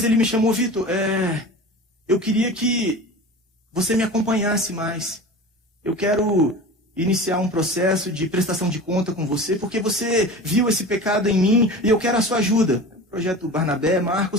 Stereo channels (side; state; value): both; normal; correlation 0.34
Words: ele me chamou, Vitor, eu queria que você me acompanhasse mais. Eu quero iniciar um processo de prestação de conta com você, porque você viu esse pecado em mim e eu quero a sua ajuda. Projeto Barnabé,